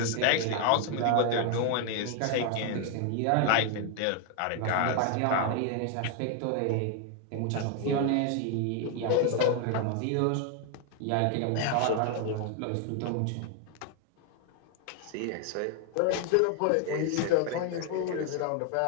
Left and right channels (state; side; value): different; both; correlation 0.00